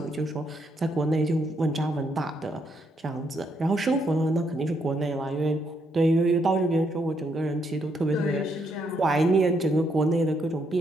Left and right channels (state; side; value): normal; both; correlation 0.75